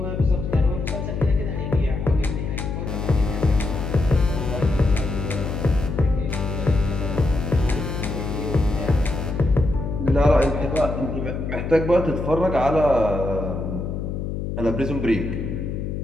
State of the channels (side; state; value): left; noise; hum, 4 dB below the sound